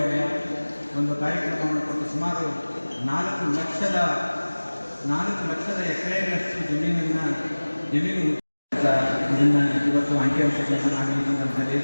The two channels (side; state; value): both; inverted; correlation -1.00